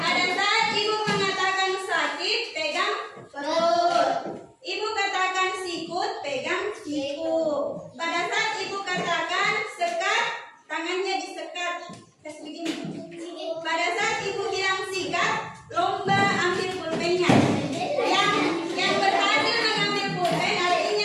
saat ibu mengatakan sakit, pegang perut. Ibu katakan sikut, pegang siku. Pada saat ibu katakan sekat, tangannya disekat. Kasih begini. Pada saat ibu bilang sikat, lomba ambil pulpennya. Yang berhasil mengambil pulpen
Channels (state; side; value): identical; both; correlation 1.00